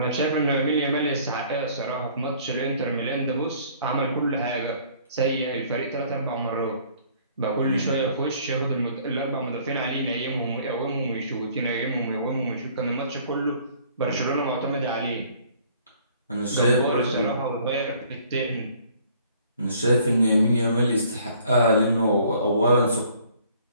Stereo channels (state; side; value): inverted; both; correlation -0.57